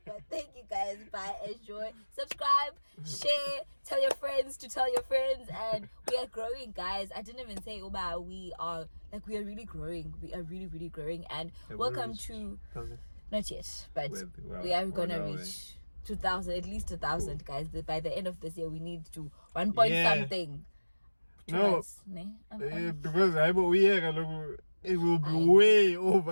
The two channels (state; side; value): inverted; both; correlation -1.00